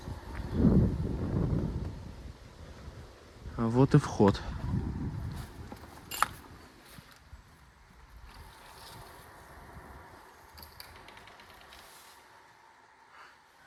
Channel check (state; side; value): identical; both; correlation 1.00